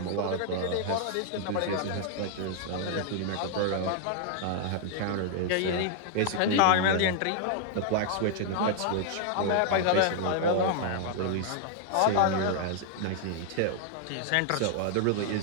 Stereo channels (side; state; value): both; different; correlation 0.00